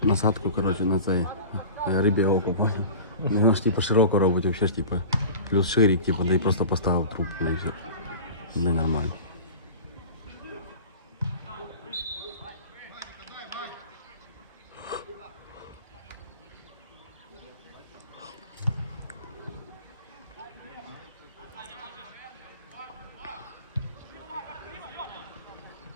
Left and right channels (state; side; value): inverted; both; correlation -0.37